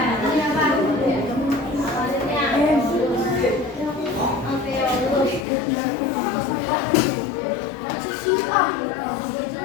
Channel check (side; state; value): right; drops out; at 5.5 s